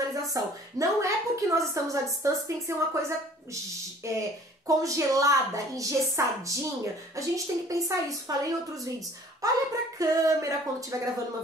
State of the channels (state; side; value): normal; both; correlation 0.52